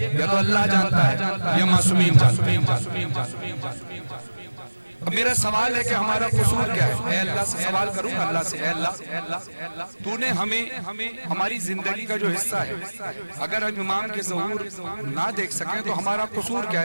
یا تو اللہ جانتا ہے یا معصومین جانتے ہیں. اب میرا سوال ہے کہ ہمارا قصور کیا ہے؟ اے اللہ سے سوال کروں گا، اللہ سے، اے اللہ تو نے ہمیں ہماری زندگی کا جو حصہ ہے اگر ہم امام کے ظہور نہ دیکھ سکیں تو ہمارا قصور کیا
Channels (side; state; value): both; inverted; correlation -1.00